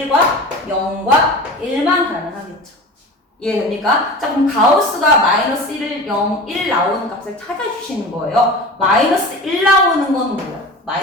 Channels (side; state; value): both; normal; correlation 0.34